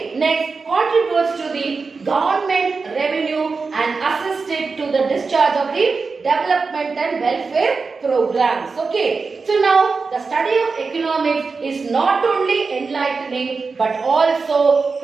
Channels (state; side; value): quieter; left; 4.5 dB